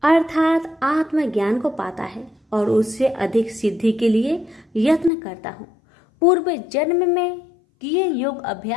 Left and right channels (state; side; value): drops out; right; at 5.1 s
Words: अर्थात आत्मज्ञान को पाता है और उससे अधिक सिद्धि के लिए यत्न करता हूँ। पूर्व जन्म में किए योग